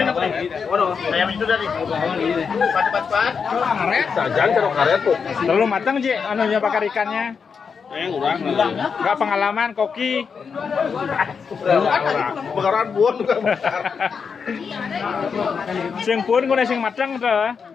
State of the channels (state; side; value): quieter; right; 5.9 dB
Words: Ayam itu tadi. Cepat. Karet, jangan taruh karet tuh. Terlalu matang Ji, anunya bakar ikannya. Kurang. Enggak pengalaman koki. Bakaran buon juga bakar. Sing pun kuna sing matang tuh.